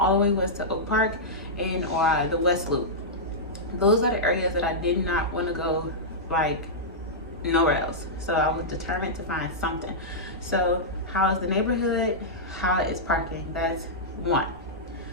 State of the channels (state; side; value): normal; both; correlation -0.11